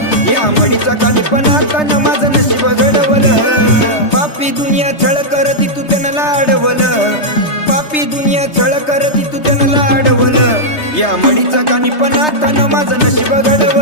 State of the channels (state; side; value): late; right; 3.3 ms